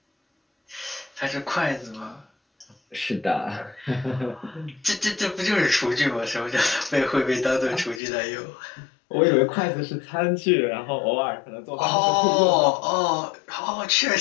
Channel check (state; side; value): drops out; right; at 8.0 s